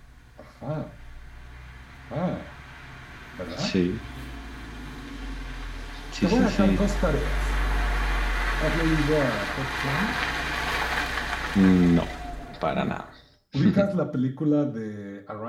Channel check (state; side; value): identical; both; correlation 1.00